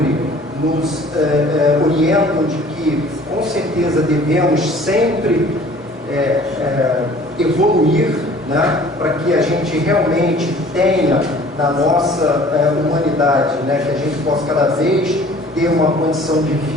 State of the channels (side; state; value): both; normal; correlation 0.50